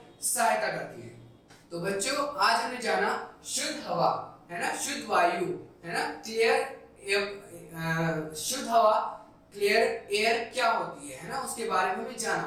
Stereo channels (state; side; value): identical; both; correlation 1.00